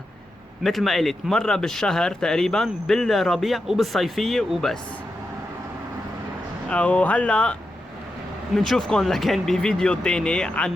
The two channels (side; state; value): both; normal; correlation 0.88